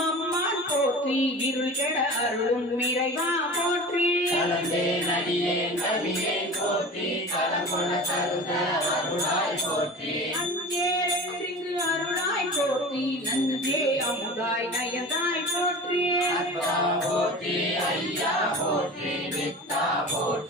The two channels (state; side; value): normal; both; correlation 0.35